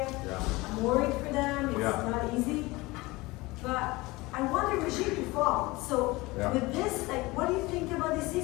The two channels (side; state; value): right; quieter; 21.9 dB